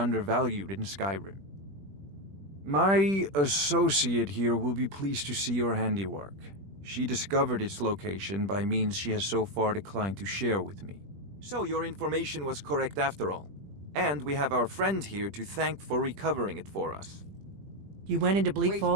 in Skyrim. My associate here will be pleased to see your handiwork. She discovered its location by means she has so far declined to share with me. So your information was correct after all. And we have our friend here to thank for recovering it for us. You went into Bleak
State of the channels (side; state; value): left; late; 20 ms